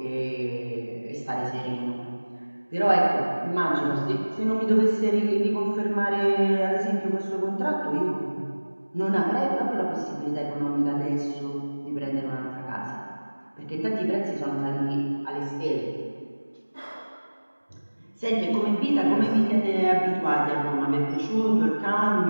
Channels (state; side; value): inverted; both; correlation -1.00